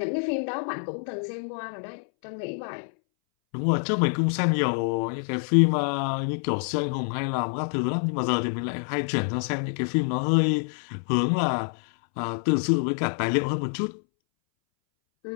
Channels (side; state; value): right; silent; 61 dB below the other